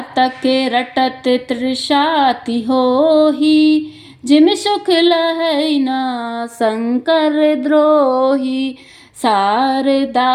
रटत तृषाति होही, जिमि सुख लहै न शंकर द्रोही,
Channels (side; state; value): both; identical; correlation 1.00